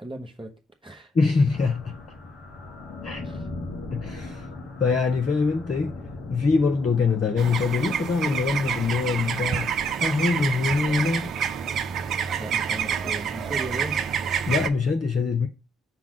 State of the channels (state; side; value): normal; both; correlation 0.72